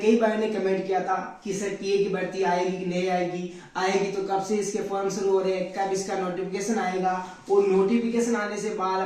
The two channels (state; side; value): identical; both; correlation 1.00